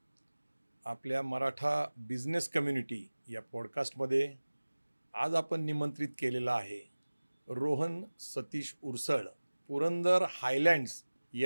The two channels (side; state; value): both; inverted; correlation -1.00